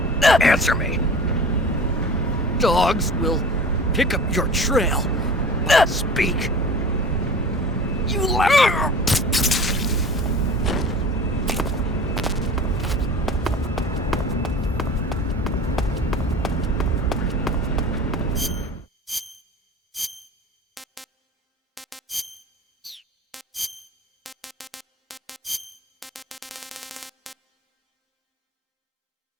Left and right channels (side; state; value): both; normal; correlation 0.39